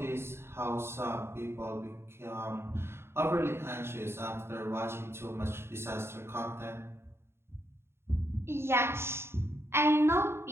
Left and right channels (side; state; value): left; late; 0.12 ms